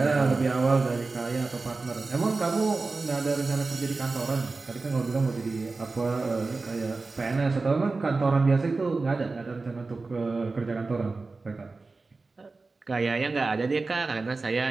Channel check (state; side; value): quieter; left; 3.8 dB